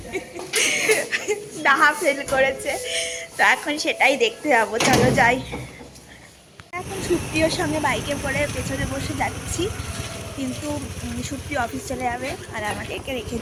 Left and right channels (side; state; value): both; identical; correlation 1.00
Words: ডাহা ফেল করেছে। তো এখন সেটাই দেখতে যাবো, চলো যাই। এখন সুপ্রিয়র সঙ্গে বাইকে করে পেছনে বসে যাচ্ছি, কিন্তু সুপ্রিয় অফিস চলে যাবে আর আমাদেরকে রেখে